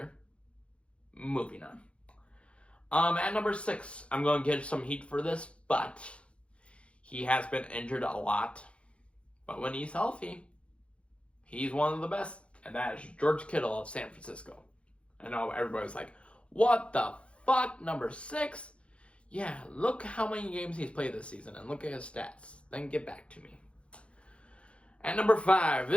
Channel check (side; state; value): right; late; 0.060 ms